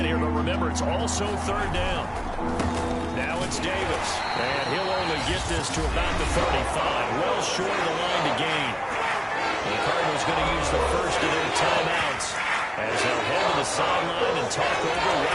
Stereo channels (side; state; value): both; identical; correlation 1.00